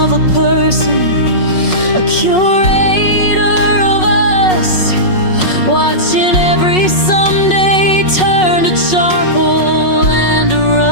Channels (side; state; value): right; late; 5.4 ms